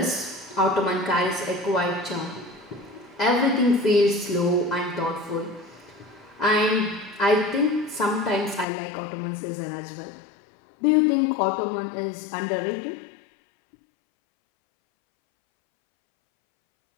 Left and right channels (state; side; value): drops out; right; at 8.7 s